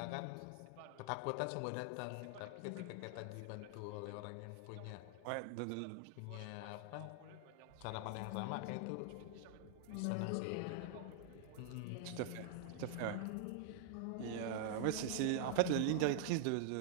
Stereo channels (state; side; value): different; both; correlation -0.01